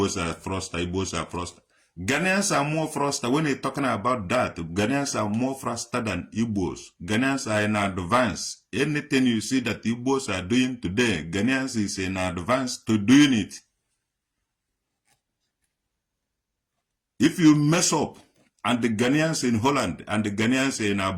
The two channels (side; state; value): both; identical; correlation 1.00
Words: are froster, Igbos are froster. Ghanaians are more froster. When you're talking about that, Ghanaians are more froster than Igbos. Ghanaians are in advance. Anything you see that Igbos are doing today, Ghanaians is in advance to doing it. If you mess up, and the Ghanaians in Holland and the Ghanaians in